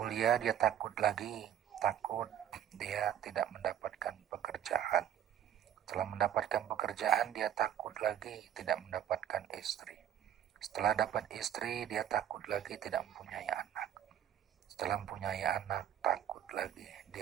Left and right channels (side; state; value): left; quieter; 10.3 dB